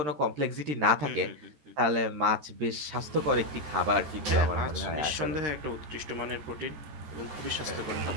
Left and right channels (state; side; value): late; left; 13 ms